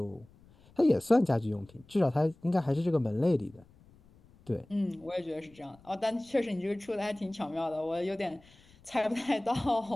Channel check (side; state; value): left; noise; rumble, 27 dB below the sound